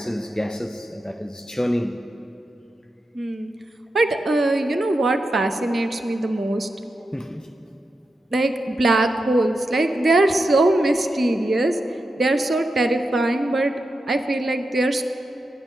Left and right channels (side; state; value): both; normal; correlation 0.89